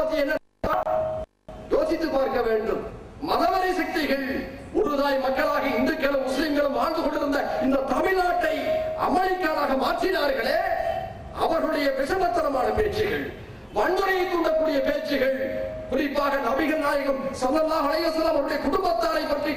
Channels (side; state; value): both; identical; correlation 1.00